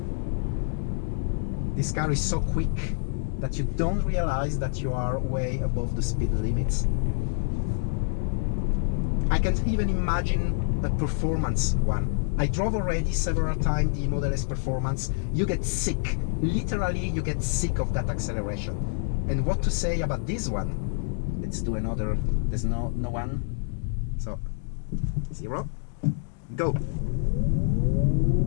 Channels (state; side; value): silent; right; digital silence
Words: This car is so quick that you don't realize that you are way above the speed limits. I can't even imagine a performance one. I drove already several times the Model S Performance. You get sick. Literally, you get sick of that acceleration. And what to say about this one? Let's do another. There's no one. So, 0. Go.